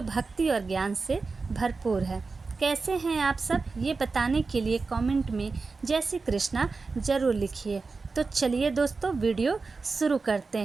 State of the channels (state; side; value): quieter; left; 4.2 dB